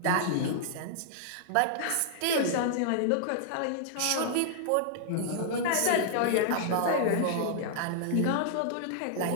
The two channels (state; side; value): different; both; correlation -0.01